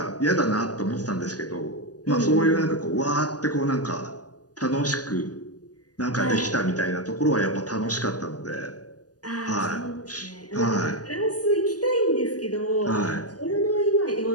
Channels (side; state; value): right; late; 0.68 ms